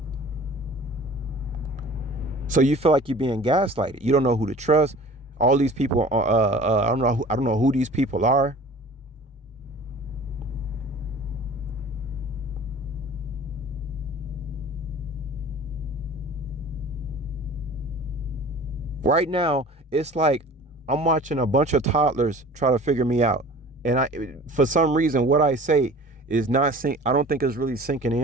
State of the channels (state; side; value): normal; both; correlation 0.44